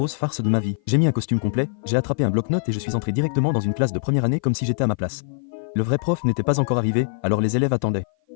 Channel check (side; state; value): right; silent; 56 dB below the other